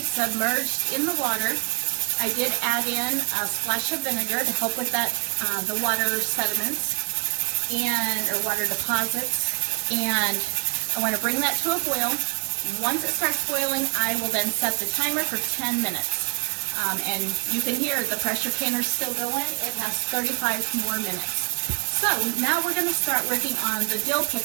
submerged in the water. I did add in a splash of vinegar to help with that, the water sediments or water deposits. And I want to bring that to a boil. Once it starts boiling, I will then set the timer for 10 minutes. And you can hear the pressure canner still going. It has 35 more minutes. So now we're going to start working on the dill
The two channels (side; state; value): left; quieter; 38.4 dB